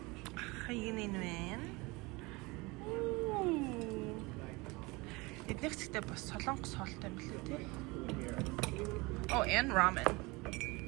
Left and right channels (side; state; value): left; quieter; 24.5 dB